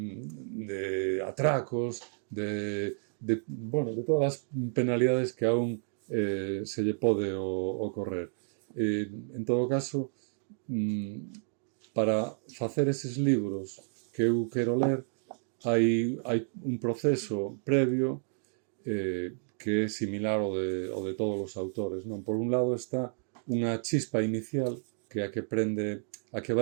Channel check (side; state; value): left; silent; 57 dB below the other